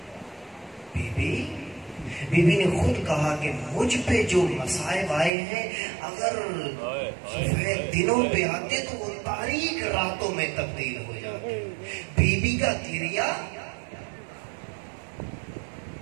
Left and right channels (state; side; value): drops out; left; at 5.3 s